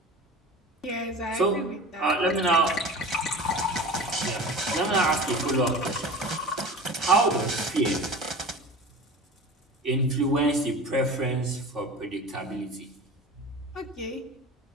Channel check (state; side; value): normal; both; correlation 0.35